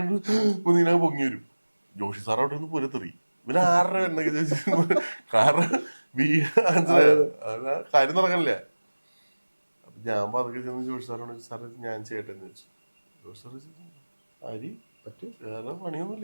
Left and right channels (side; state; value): both; inverted; correlation -1.00